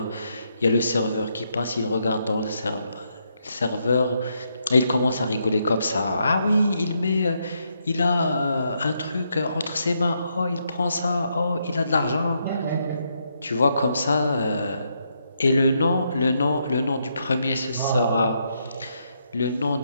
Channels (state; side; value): inverted; both; correlation -0.78